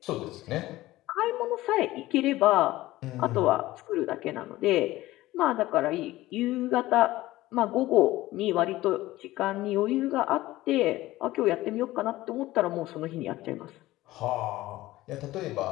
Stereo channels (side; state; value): right; quieter; 17.1 dB